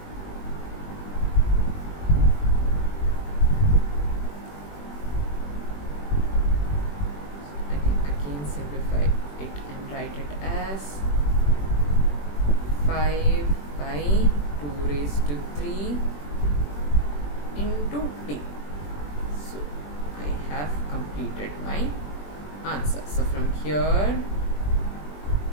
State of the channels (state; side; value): late; right; 21 ms